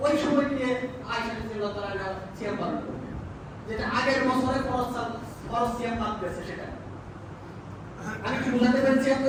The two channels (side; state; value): both; identical; correlation 1.00